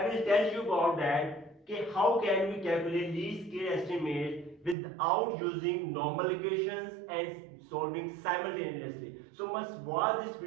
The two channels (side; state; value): left; drops out; at 4.8 s